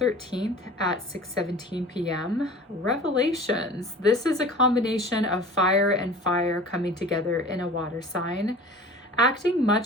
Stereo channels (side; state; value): both; normal; correlation 0.41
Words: at 6:17 p.m. Revelations. This is a combination of fire and fire coming together in a water sign, acting